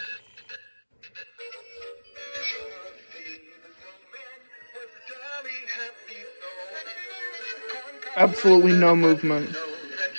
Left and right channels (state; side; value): inverted; both; correlation -1.00